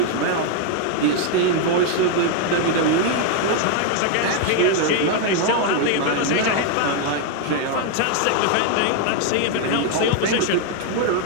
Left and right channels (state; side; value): different; both; correlation 0.00